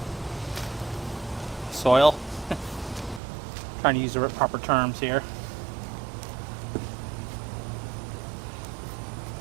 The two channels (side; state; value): left; drops out; at 3.2 s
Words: Soil. Trying to use the proper terms here.